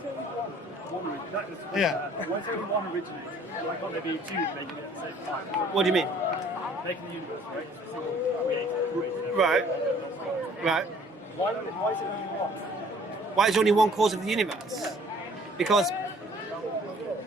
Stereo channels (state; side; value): normal; both; correlation 0.56